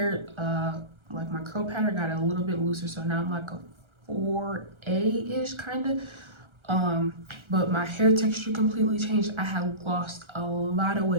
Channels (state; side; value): late; left; 1.3 ms